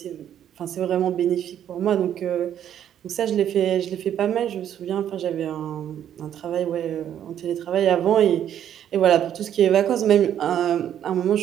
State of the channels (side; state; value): left; quieter; 10.1 dB